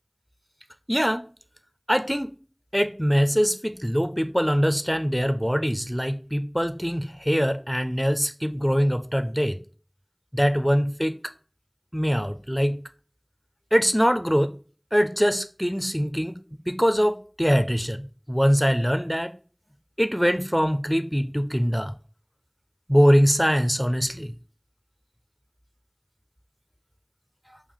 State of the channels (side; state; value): both; identical; correlation 1.00